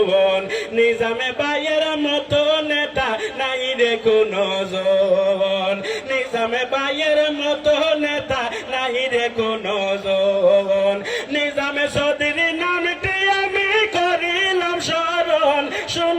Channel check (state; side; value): identical; both; correlation 1.00